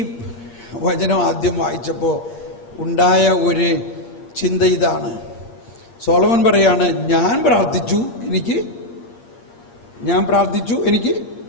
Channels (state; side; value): late; right; 8.6 ms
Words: വചനം ആദ്യം വായിച്ചപ്പോ ഉണ്ടായ ഒരു ചിന്ത ഇതാണ്. സോളമൻ പറയാണ്, ഞാൻ പ്രാർത്ഥിച്ചു, എനിക്ക്